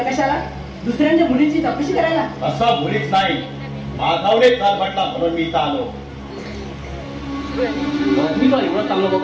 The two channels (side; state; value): both; identical; correlation 1.00